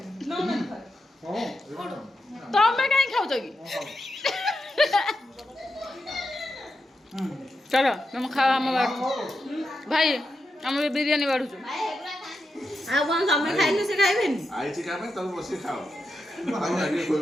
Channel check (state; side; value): normal; both; correlation 0.87